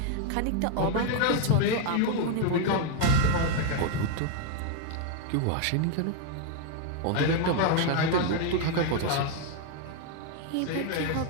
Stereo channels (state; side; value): different; both; correlation 0.00